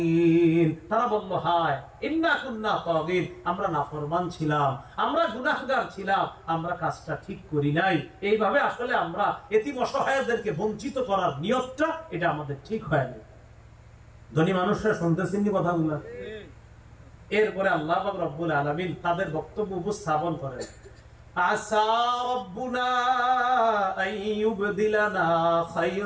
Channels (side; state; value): both; identical; correlation 1.00